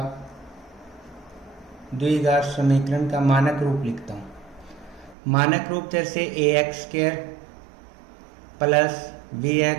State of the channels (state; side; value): drops out; left; at 5.2 s